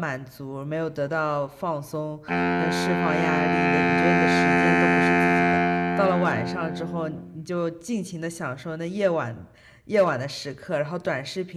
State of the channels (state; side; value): identical; both; correlation 1.00